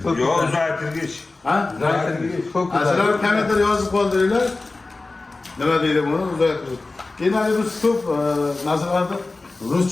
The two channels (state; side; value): quieter; right; 3.4 dB